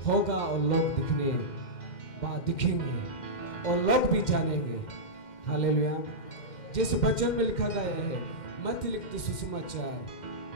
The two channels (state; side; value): late; right; 2.1 ms